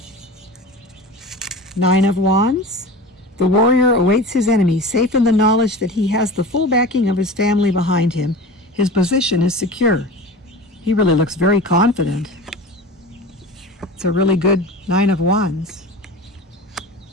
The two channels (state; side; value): normal; both; correlation 0.33